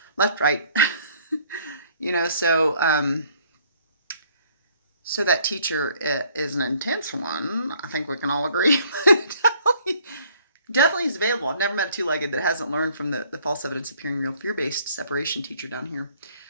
left, right. So that teacher is an intense one. I think we can all agree. Definitely is available. I've never met a two-legged that hasn't learned from the false evidence appearing real fear-based separation teacher down here.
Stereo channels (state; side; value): inverted; both; correlation -0.61